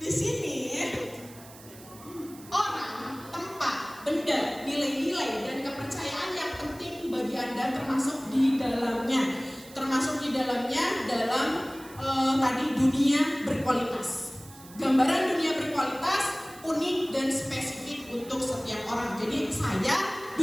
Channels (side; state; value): right; noise; hiss, 20 dB below the sound